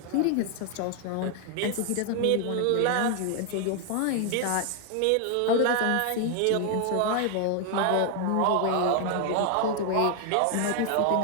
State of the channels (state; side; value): different; both; correlation 0.00